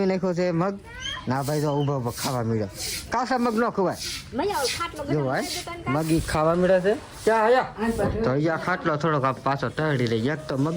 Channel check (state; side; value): identical; both; correlation 1.00